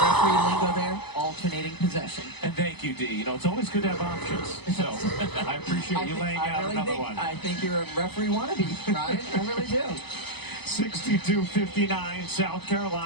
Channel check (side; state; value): right; late; 0.99 ms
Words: lingo there. Alternating possession. And thank you, D. You know, it's always good to have options. So I appreciate you laying out another one. I think you're a referee wannabe, Ryan. I really do. 62-59, South